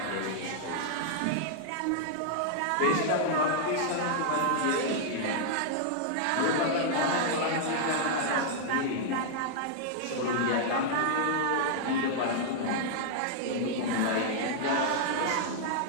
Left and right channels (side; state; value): both; different; correlation -0.01